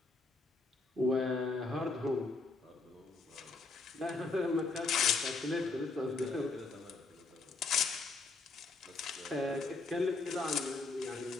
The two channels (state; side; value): quieter; right; 3.7 dB